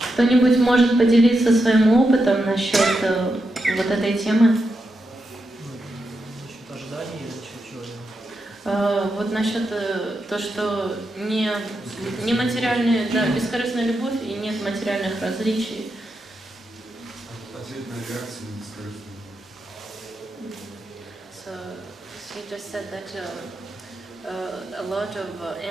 Кто-нибудь может поделиться своим опытом насчет вот этой темы? Вот насчет то, что не материальная, да, бескорыстная любовь и нет материальных различий. Ответная реакция на бескорыстную любовь. So she just said that a lot of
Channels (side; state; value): both; normal; correlation 0.86